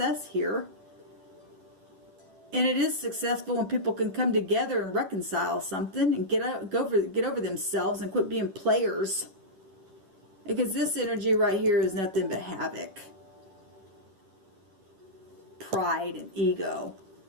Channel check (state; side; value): late; left; 10 ms